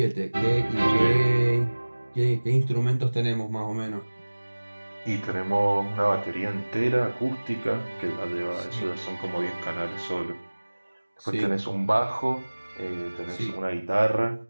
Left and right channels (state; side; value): inverted; both; correlation -1.00